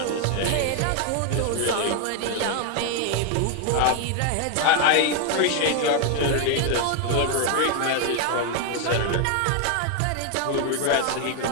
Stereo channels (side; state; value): both; different; correlation 0.01